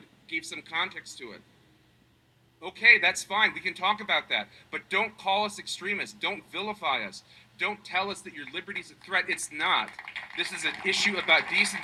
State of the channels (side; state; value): both; identical; correlation 1.00